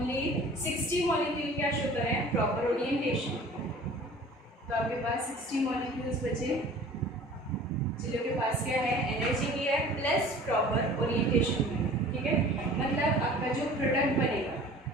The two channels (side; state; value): both; normal; correlation 0.45